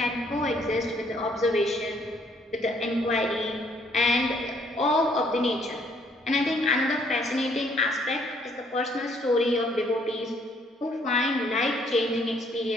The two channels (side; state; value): both; normal; correlation 0.66